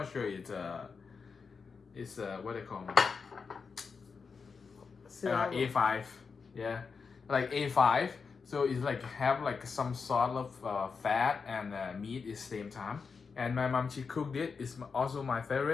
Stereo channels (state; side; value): quieter; right; 5.3 dB